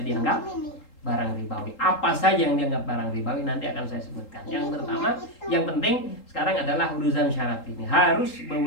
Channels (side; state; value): right; late; 3.8 ms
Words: barang ribawi. Apa saja yang dianggap barang ribawi nanti akan saya sebutkan. Yang pertama, yang penting sekarang adalah urusan syarat ini harus